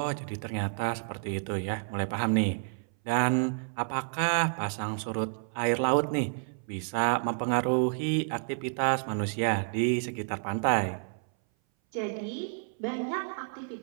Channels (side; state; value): left; silent; 58 dB below the other